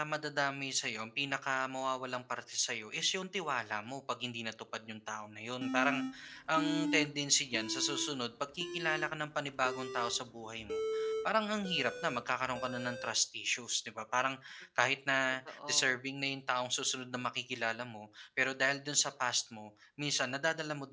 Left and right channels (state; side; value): identical; both; correlation 1.00